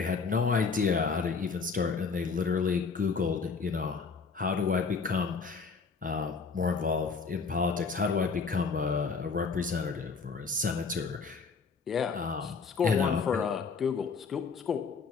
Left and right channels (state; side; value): quieter; right; 5.0 dB